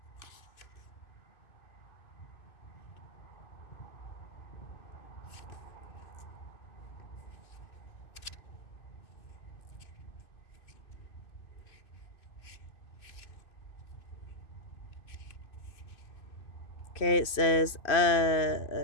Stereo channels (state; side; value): late; right; 2.6 ms